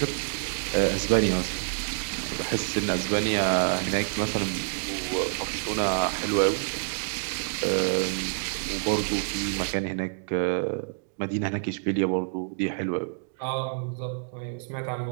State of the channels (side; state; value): left; silent; digital silence